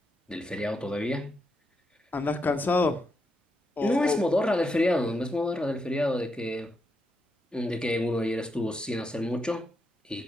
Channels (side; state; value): both; normal; correlation 0.83